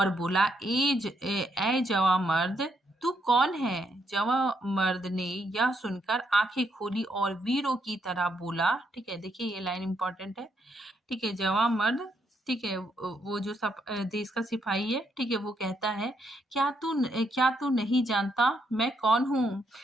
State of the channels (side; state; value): both; normal; correlation 0.76